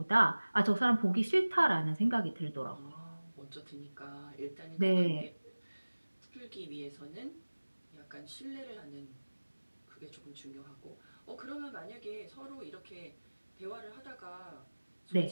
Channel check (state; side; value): inverted; both; correlation -1.00